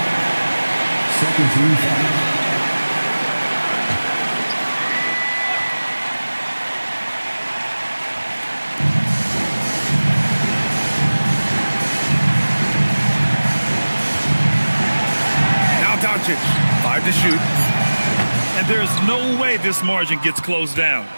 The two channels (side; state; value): both; inverted; correlation -1.00